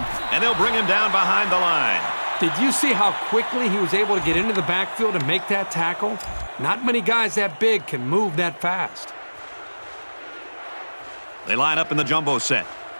and they'll bring him down behind the line. Did you see how quickly he was able to get into the backfield and make that tackle? Not many guys that big can move that fast. They line up in the jumbo set.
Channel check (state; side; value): inverted; both; correlation -1.00